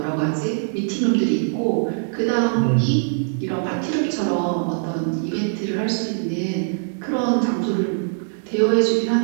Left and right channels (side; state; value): left; silent; digital silence